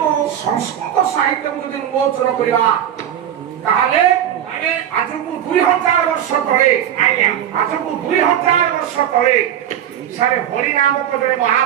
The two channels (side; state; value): left; quieter; 10.4 dB